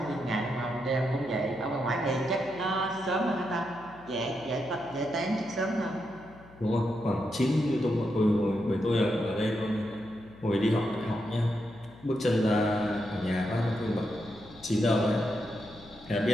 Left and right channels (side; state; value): left; noise; hum, 22 dB below the sound